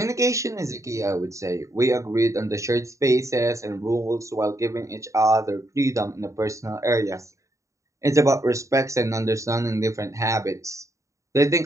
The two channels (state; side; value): late; left; 0.15 ms